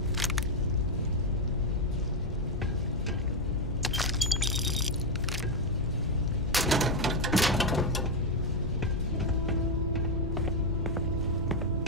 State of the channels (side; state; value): both; normal; correlation 0.03